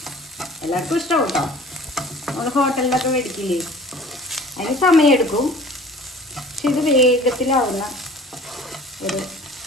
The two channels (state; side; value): normal; both; correlation 0.46